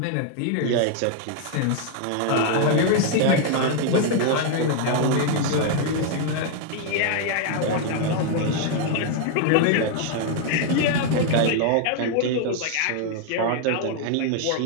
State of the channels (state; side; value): different; both; correlation 0.00